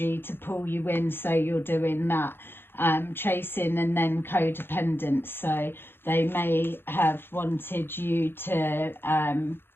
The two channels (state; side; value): late; right; 0.10 ms